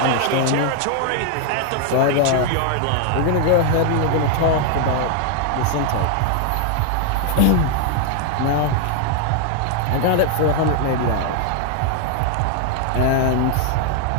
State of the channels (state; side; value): different; both; correlation 0.00